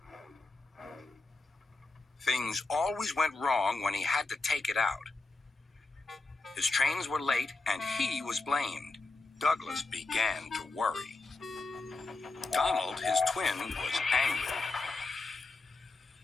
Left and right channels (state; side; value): quieter; right; 3.4 dB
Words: Things always went wrong when he had to take it out. His trains were late, and he was blamed. Douglas began to worry. Donald, his twin, was angry.